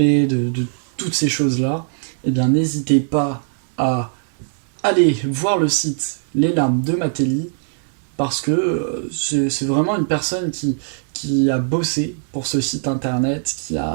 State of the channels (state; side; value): silent; left; 66 dB below the other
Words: toutes ces choses-là, eh bien n'hésitez pas à aller voir le site Les Larmes de Mateli, parce que c'est vraiment une personne qui a bossé pour ce site internet, qui